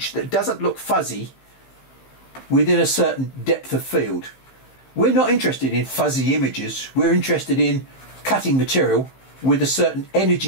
that doesn't look fuzzy within a certain depth of field. We're not interested in fuzzy images, we're interested in cutting material with a certain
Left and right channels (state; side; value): late; right; 15 ms